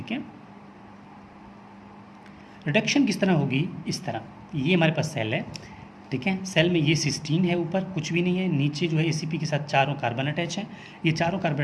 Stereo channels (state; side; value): identical; both; correlation 1.00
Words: है। रिडक्शन किस तरह होगी, इस तरह, ये हमारे पास सेल है, ठीक है, सेल में ये सिस्टीन है, ऊपर कुछ भी नहीं है, नीचे जो है ACP के साथ चारों कार्बन अटैच हैं, ये चारों कार्बन